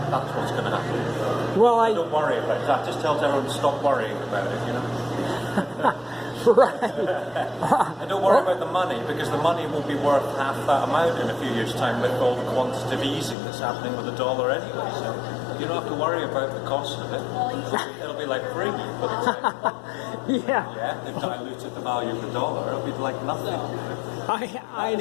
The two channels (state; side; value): drops out; right; at 13.4 s